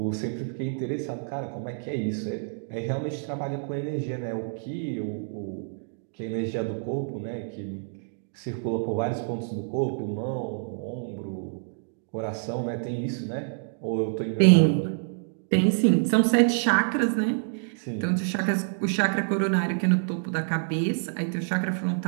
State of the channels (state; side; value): silent; left; digital silence